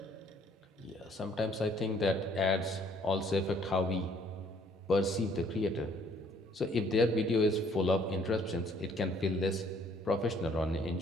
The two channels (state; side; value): normal; both; correlation 0.61